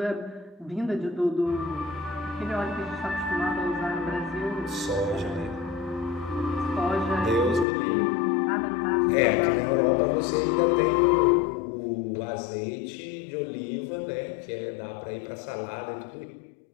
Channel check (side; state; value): right; drops out; at 7.7 s